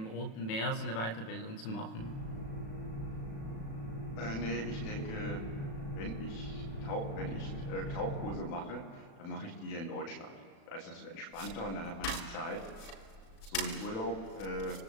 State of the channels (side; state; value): right; late; 36 ms